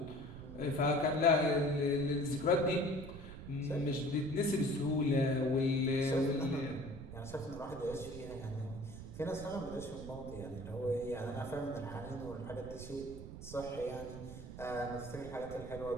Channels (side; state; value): right; noise; rumble, 11 dB below the sound